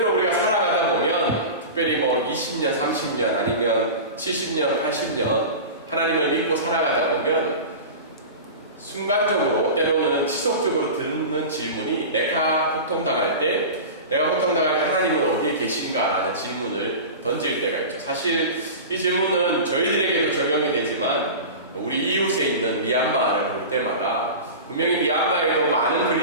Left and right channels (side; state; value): both; inverted; correlation -0.30